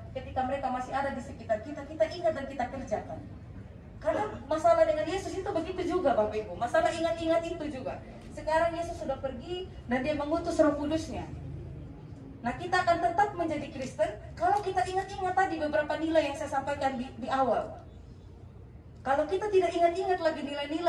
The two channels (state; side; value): identical; both; correlation 1.00